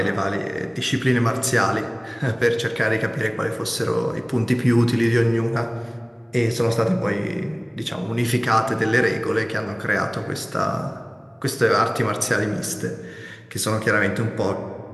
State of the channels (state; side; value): identical; both; correlation 1.00